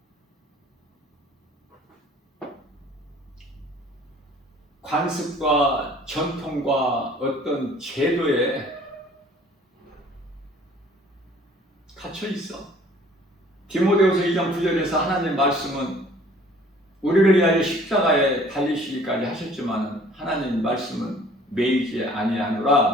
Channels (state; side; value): normal; both; correlation 0.53